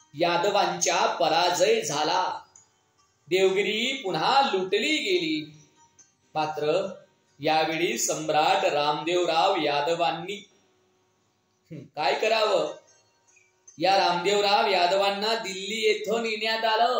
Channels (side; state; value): both; identical; correlation 1.00